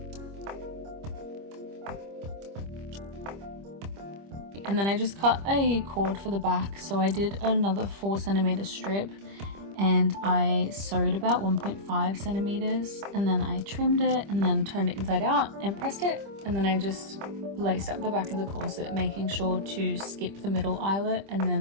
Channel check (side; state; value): left; late; 25 ms